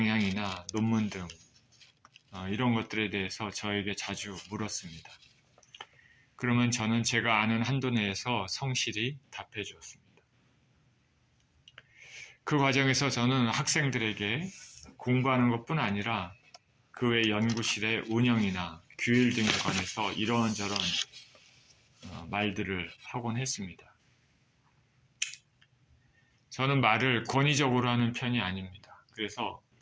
논문 등 이런 것들에 대해서 저에게 자주 물었습니다. 그러면 저는 제가 아는 한도 내에서 성실히 답해 주었습니다. 그 과정에서 저는 학생들에게 공부하는 것뿐 아니라 그 외 연구실의 운영이나 규율 등에 관해서 이런저런 말들을 하곤 했습니다. 저는 말을 권위적으로 하는 편이 아닙니다. 그래서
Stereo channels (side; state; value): both; identical; correlation 1.00